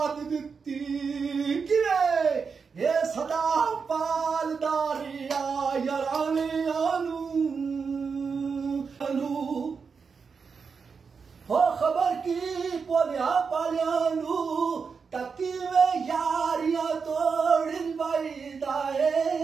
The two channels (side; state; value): left; quieter; 5.5 dB